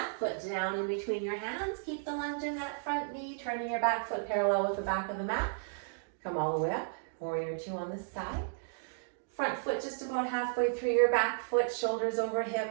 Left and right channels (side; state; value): left; silent; digital silence